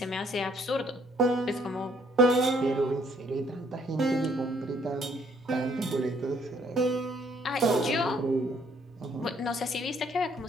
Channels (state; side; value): normal; both; correlation 0.65